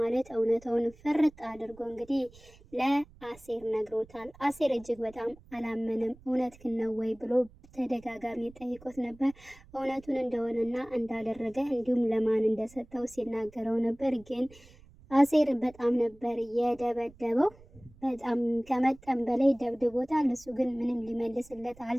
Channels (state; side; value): noise; right; rumble, 24 dB below the sound